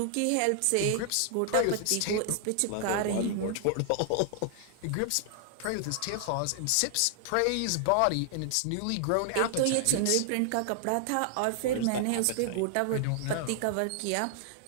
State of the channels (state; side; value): different; both; correlation 0.00